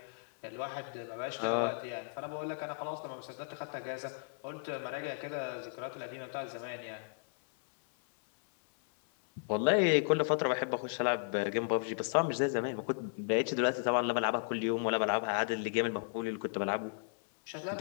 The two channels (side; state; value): right; silent; 55 dB below the other